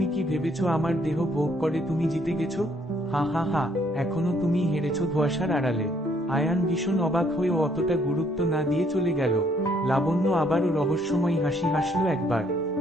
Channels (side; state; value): both; normal; correlation 0.67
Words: কি ভেবেছো আমার দেহ ভোগ করে তুমি জিতে গেছো? হা হা হা, এখনো তুমি হেরেছো ধোঁয়াশার আড়ালে। আয়ান ভীষণ অবাক হয়েও অতটা গুরুত্ব না দিয়ে চলে গেল। লাবণ্য আবারও রহস্যময়ী হাসি হাসল একবার।